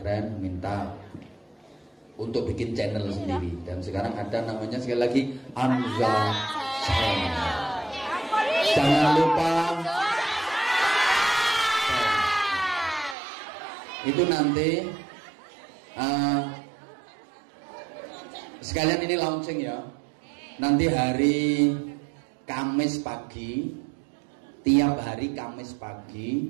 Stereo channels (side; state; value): left; drops out; at 13.2 s